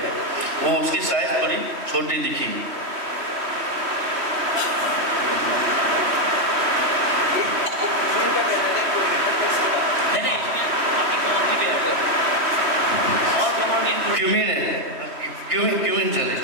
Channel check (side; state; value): left; late; 3.1 ms